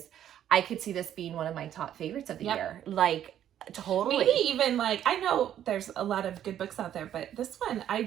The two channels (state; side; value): quieter; left; 10.7 dB